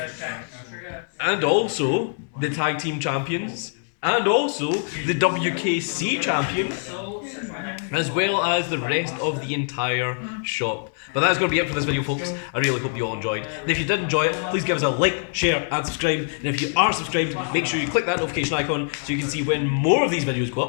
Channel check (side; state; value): right; silent; digital silence